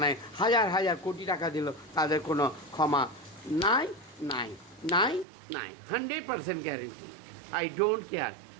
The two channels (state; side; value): drops out; left; at 5.2 s